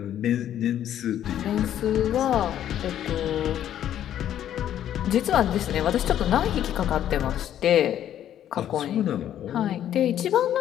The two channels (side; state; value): right; quieter; 10.9 dB